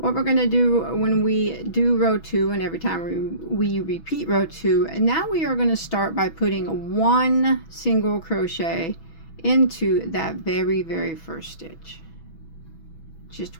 we're going to do when we do row 2 and every time we repeat row 2, now we are going to start by putting 1 single crochet into that very first stitch.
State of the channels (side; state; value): right; late; 6.2 ms